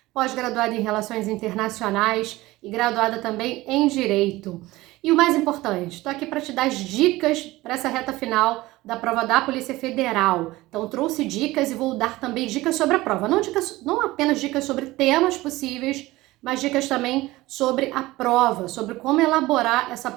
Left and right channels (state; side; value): quieter; left; 18.8 dB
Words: pós-graduada em Relações Internacionais e graduada também em Direito. E o mais importante, estou aqui para te dar as dicas para essa reta final da prova da Polícia Federal. Então, trouxe dicas e vou dar também dicas sobre a prova. Não apenas dicas sobre temas possíveis, mas dicas também sobre a prova, sobre como elaborar essa